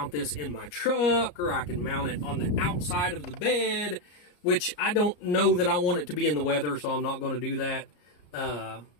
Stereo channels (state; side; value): late; right; 34 ms